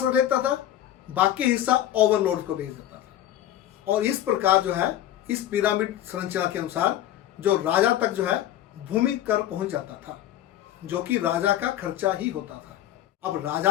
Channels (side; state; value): right; quieter; 12.5 dB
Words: रख लेता था, बाकी हिस्सा ओवरलॉर्ड को भेज देता था। और इस प्रकार जो है इस पिरामिड संरचना के अनुसार जो राजा तक जो है भूमि कर पहुंच जाता था, जो कि राजा का खर्चा ही होता था। अब